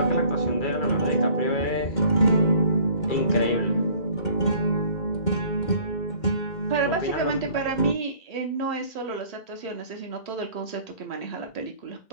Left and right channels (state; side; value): late; right; 2.1 ms